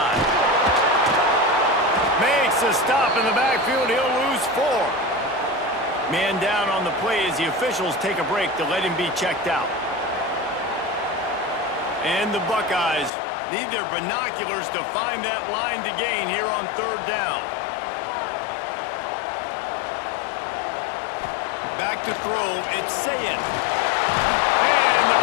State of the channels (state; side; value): drops out; right; at 13.1 s